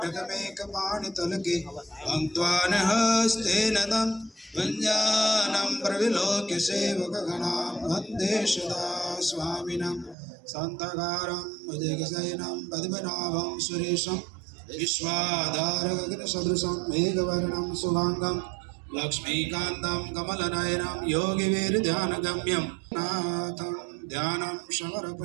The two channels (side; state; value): left; drops out; at 10.2 s